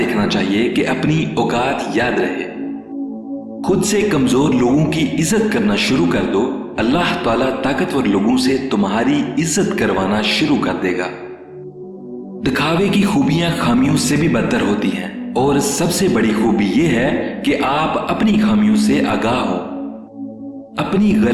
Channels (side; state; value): both; identical; correlation 1.00